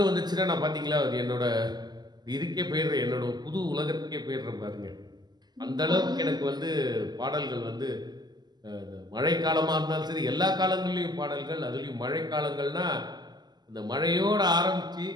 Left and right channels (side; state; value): left; late; 0.20 ms